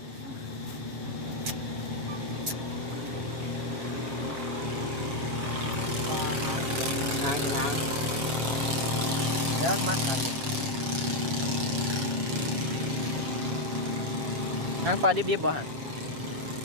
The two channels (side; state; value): left; late; 7.6 ms